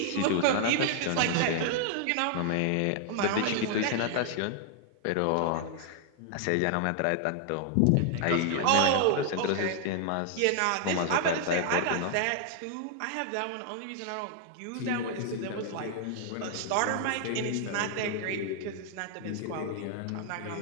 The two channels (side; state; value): both; different; correlation 0.00